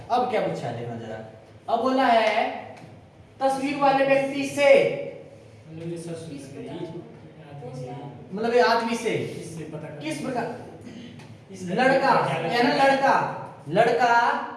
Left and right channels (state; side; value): identical; both; correlation 1.00